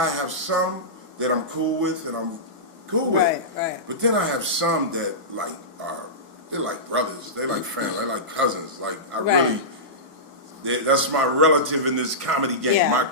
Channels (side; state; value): both; normal; correlation -0.17